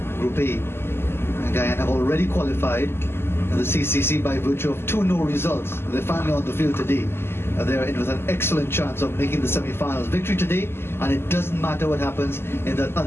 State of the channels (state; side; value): late; right; 0.12 ms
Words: Group A. And Guyana have already qualified the CCC by virtue of 2 no results. They're finally on the field today. They're in with an excellent chance of making the semi-finals. Victory today, and it doesn't matter what happens in that